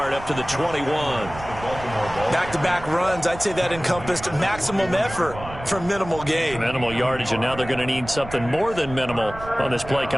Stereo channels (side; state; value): right; noise; rumble, 13 dB below the sound